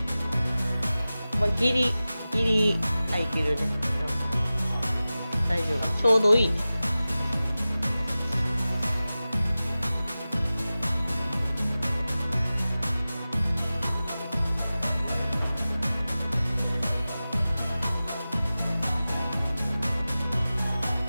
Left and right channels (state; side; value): inverted; both; correlation -0.96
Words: まあギリ入ってるね。大丈夫。ちょうどいいね。